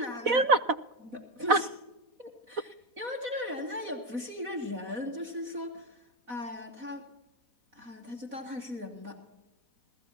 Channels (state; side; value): late; left; 4.0 ms